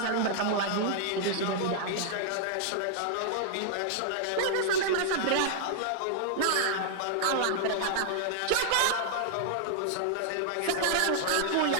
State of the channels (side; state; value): both; different; correlation -0.01